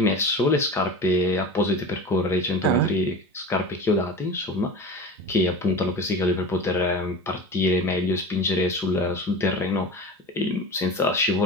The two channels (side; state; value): both; normal; correlation 0.32